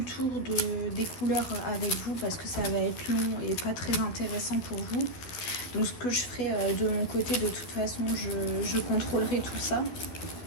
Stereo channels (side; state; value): right; late; 12 ms